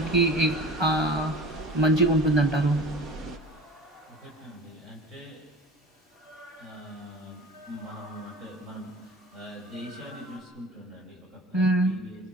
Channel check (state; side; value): normal; both; correlation 0.39